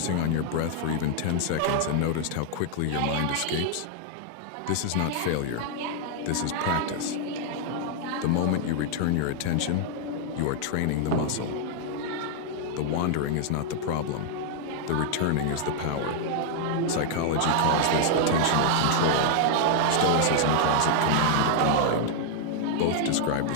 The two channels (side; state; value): both; different; correlation 0.00